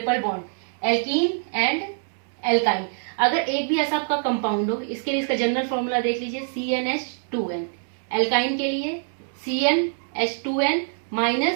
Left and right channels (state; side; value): silent; left; 62 dB below the other